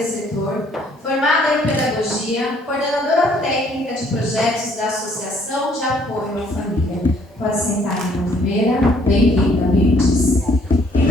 setor, formada em pedagogia, coordenadora técnica de projetos da Associação de Apoio à Família. Pode sentar aqui na primeira. Bem-vinda, Mirtes. E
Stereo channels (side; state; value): both; normal; correlation 0.63